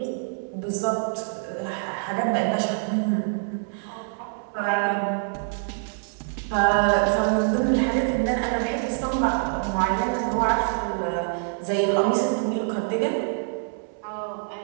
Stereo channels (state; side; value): silent; left; 61 dB below the other